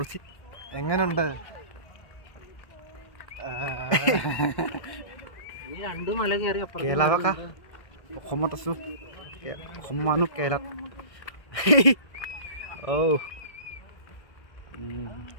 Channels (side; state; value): right; late; 1.6 ms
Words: എങ്ങനെയുണ്ട് কেৰেলা অসমত আছোঁ অসমৰ মানুহ কেৰেলাত